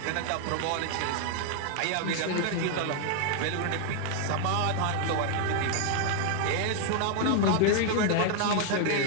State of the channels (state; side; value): different; both; correlation 0.00